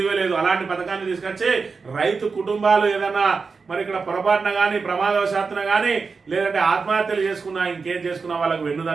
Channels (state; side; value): quieter; left; 4.8 dB